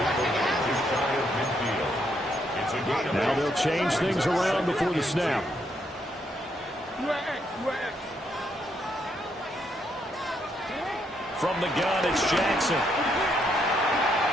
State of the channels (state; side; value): normal; both; correlation 0.75